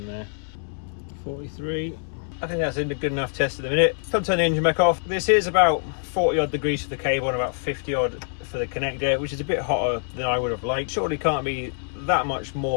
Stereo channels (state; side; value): silent; right; 62 dB below the other